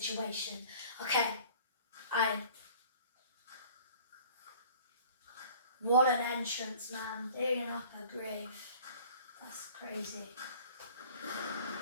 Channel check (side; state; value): both; inverted; correlation -0.49